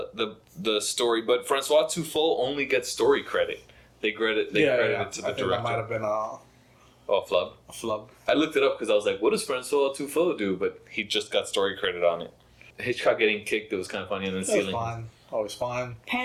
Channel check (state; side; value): identical; both; correlation 1.00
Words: story, but Francois Truffaut only gets story credit. They credit it to I the think that director. might have been a Flub. flub. I looked it up because I was like, what does Francois Truffaut do? But he just got story credit on it. Hitchcock getting kicked, it was kind of funny, and then That was stealing. fun. Always fun.